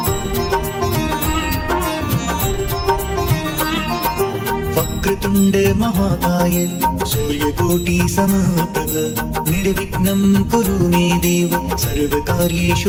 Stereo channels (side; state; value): both; identical; correlation 1.00